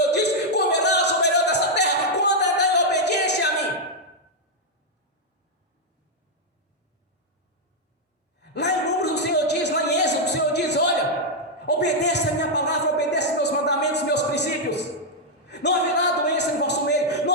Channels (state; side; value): normal; both; correlation -0.02